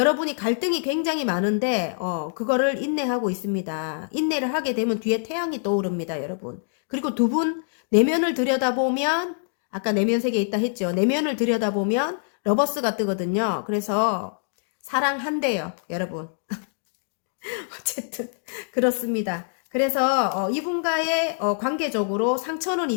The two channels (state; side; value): silent; right; digital silence